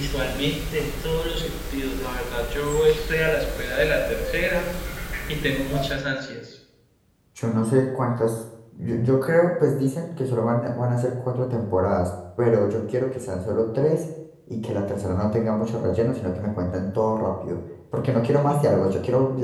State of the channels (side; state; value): both; identical; correlation 1.00